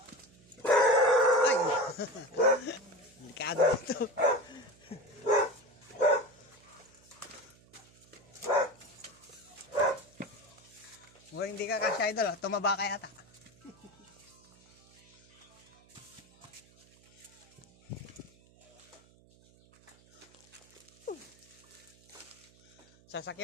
Ay! Delikado ito. Mukhang hindi ka kasya Idol, tumaba ka yata.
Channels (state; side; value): noise; right; hum, 28 dB below the sound